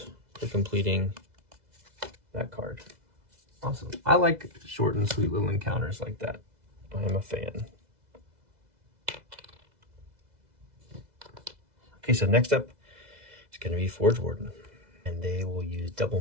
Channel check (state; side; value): late; left; 2.0 ms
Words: for completing that card. Awesome. I like short and sweet little encounters like that. I'm a fan. Okay, so next up is going to be Forge Warden. And they will use double